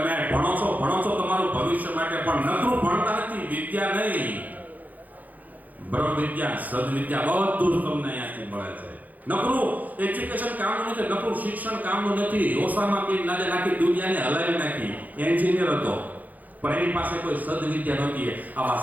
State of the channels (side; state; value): left; late; 0.081 ms